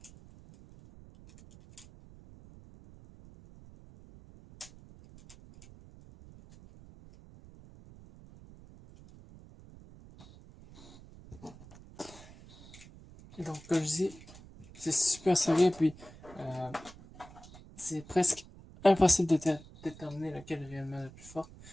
Donc, comme je dis, c'est super serré, puis c'est presque impossible de déterminer laquelle est réellement la plus forte.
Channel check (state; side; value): noise; right; rumble, 20 dB below the sound